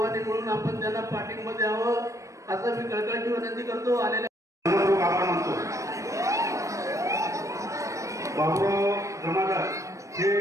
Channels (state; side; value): late; left; 0.15 ms